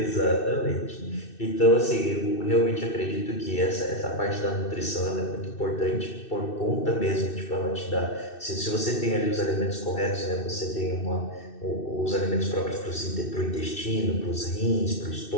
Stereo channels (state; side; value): late; right; 2.6 ms